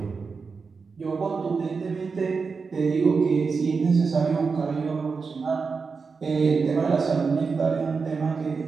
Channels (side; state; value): left; quieter; 4.9 dB